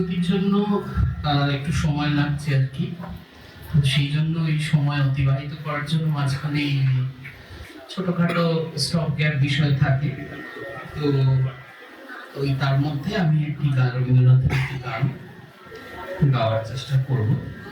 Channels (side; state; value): both; identical; correlation 1.00